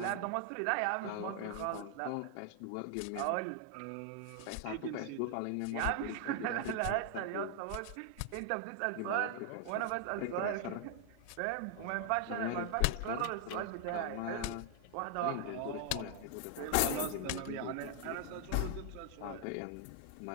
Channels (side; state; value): both; different; correlation 0.00